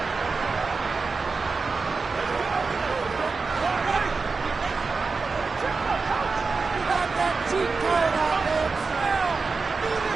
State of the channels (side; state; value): left; quieter; 4.4 dB